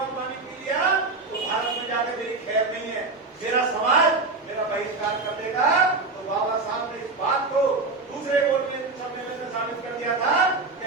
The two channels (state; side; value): quieter; left; 3.7 dB